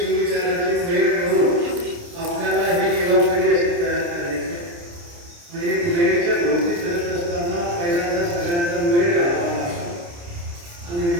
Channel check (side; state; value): left; late; 29 ms